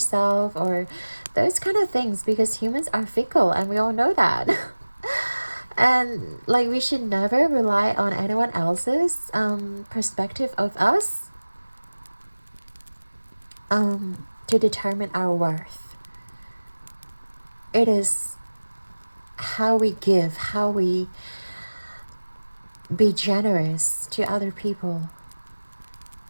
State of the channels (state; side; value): inverted; both; correlation -1.00